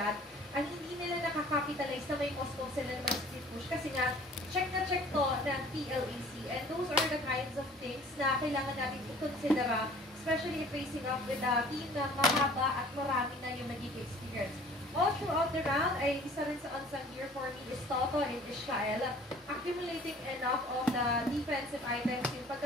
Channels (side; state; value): both; normal; correlation 0.50